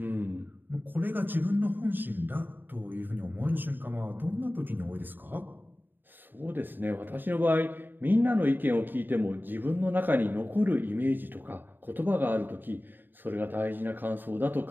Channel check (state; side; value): late; left; 0.092 ms